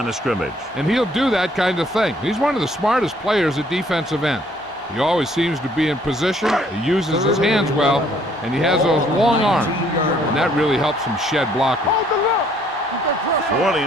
of scrimmage. And he'll do that kind of thing. He's one of the smartest players at defensive end. He always seems to be in position, he uses his hands well, and he has those long arms, and that really helps him shed blockers. New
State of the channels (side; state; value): both; normal; correlation 0.63